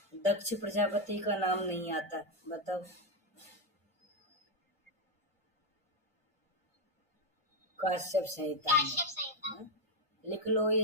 दक्ष प्रजापति का नाम नहीं आता, बताओ। काश्यप संहिता में। हाँ? लिख लो ये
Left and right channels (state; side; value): normal; both; correlation 0.04